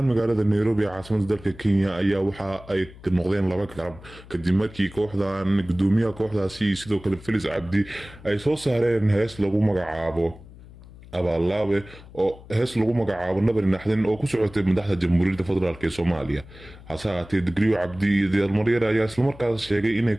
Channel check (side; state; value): left; noise; hum, 19 dB below the sound